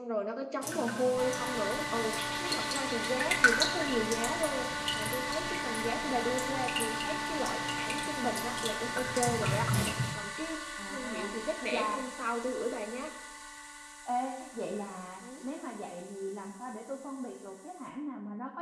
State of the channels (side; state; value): both; identical; correlation 1.00